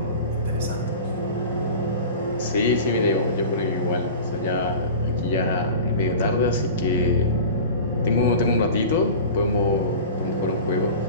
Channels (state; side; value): inverted; both; correlation -0.35